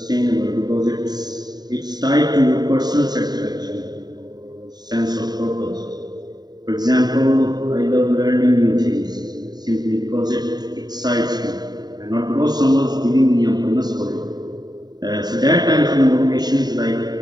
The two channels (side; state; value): left; late; 0.20 ms